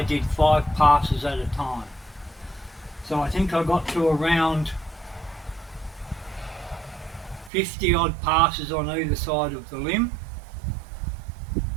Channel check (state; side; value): drops out; left; at 7.5 s